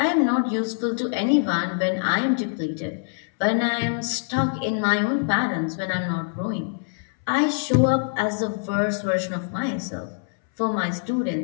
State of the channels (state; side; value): silent; right; 62 dB below the other